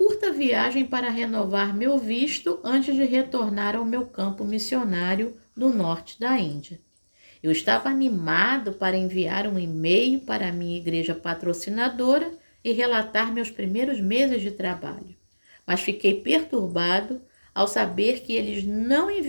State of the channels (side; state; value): both; inverted; correlation -1.00